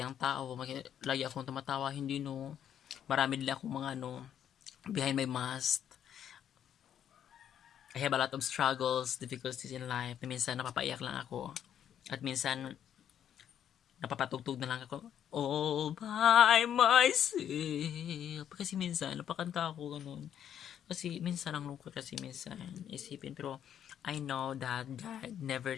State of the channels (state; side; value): quieter; right; 9.6 dB